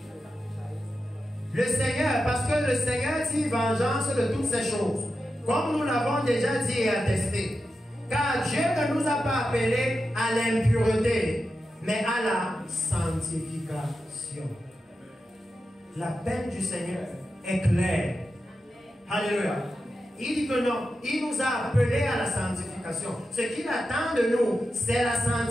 le Seigneur, parce que le Seigneur tire vengeance de toutes ces choses, comme nous l'avons déjà dit et attesté. Car Dieu ne nous a pas appelés à l'impureté, mais à la sanctification. La peine du Seigneur est claire. Alléluia. Il dit que non, il nous a appelés à la sanctification. Ce qu'il attend de nous, c'est la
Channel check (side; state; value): both; normal; correlation 0.90